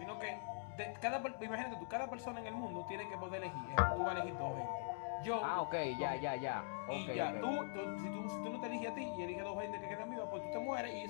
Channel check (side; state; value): right; silent; digital silence